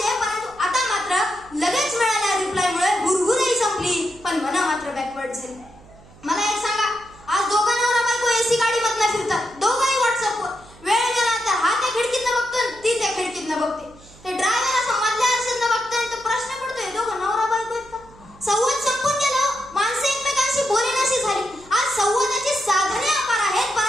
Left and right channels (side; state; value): right; noise; hum, 23 dB below the sound